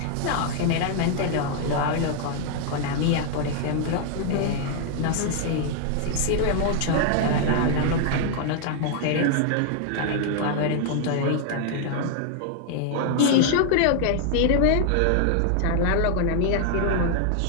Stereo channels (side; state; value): both; different; correlation 0.00